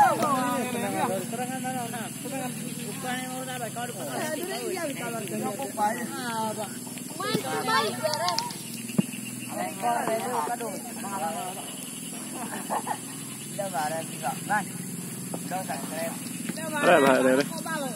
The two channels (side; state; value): both; identical; correlation 1.00